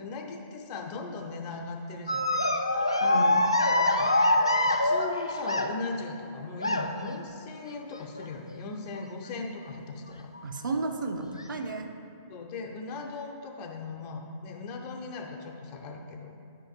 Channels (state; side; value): inverted; both; correlation -0.66